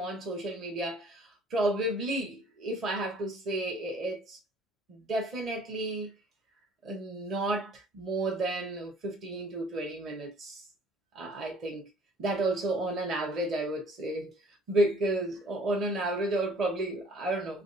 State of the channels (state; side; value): normal; both; correlation 0.54